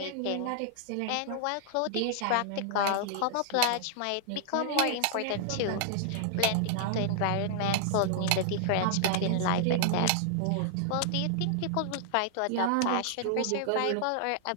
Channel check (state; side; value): different; both; correlation -0.01